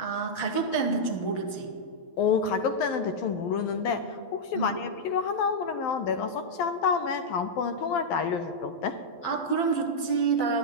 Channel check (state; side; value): late; right; 12 ms